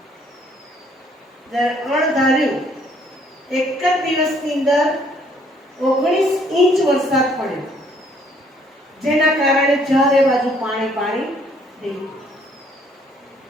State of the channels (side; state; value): both; normal; correlation 0.64